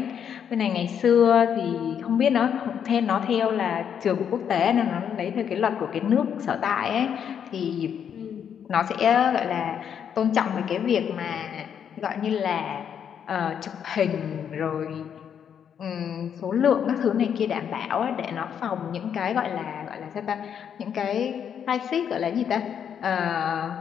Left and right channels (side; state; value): right; quieter; 8.2 dB